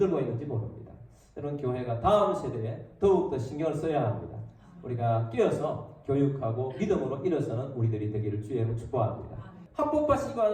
있는지 모릅니다. 여러분, 교회가 다음 세대에 더욱더 신경을 써야 합니다. 우리가 끼어서 교육하고 믿음으로 일어서는 우리들이 되기를 주의 이름으로 축복합니다. 합법화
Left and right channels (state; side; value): identical; both; correlation 1.00